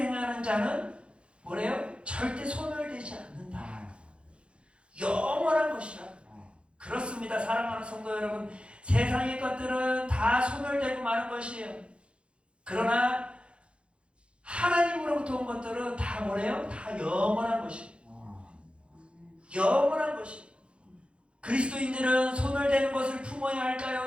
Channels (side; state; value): left; late; 0.058 ms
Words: 자는 뭐래요? 절대 소멸되지 않는다. 영원한 것이라. 그렇습니다. 사랑하는 성도 여러분, 세상의 것들은 다 소멸되고 마는 것이에요. 그러나 하나님으로부터 온 것들은 다 뭐래요? 다 영원한 것이에요. 영원한 것이에요. 그리스도인들은 소멸되는 것을 품어야